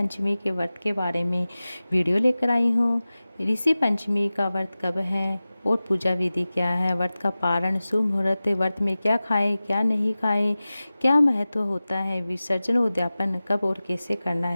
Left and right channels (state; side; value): inverted; both; correlation -0.97